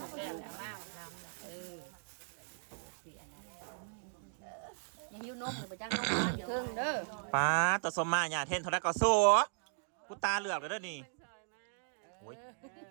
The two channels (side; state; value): left; silent; digital silence